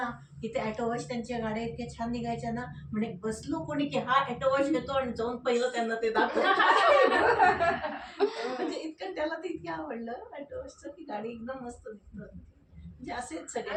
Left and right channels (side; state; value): both; identical; correlation 1.00